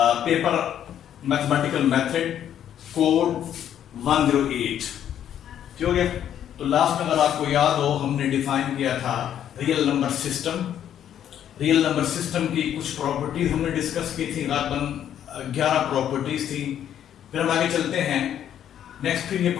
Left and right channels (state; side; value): quieter; right; 10.1 dB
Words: Paper mathematical method code 108। ठीक हो गया। तो लास्ट में अगर आपको याद हो हमने डिफाइन किया था real number system. Real number system की कुछ प्रॉपर्टीज हमने डिस्कस की थी, तकरीबन 11 प्रॉपर्टीज थी। फिर हम आगे चलते हैं। नेक्स्ट फिर ये